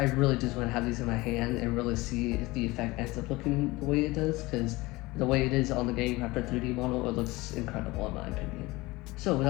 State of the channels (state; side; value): quieter; right; 21.3 dB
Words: really just want to have these in my hand and really see if the effect ends up looking the way it does, because the way it is on the game after 3D model, it looks incredible in my opinion. So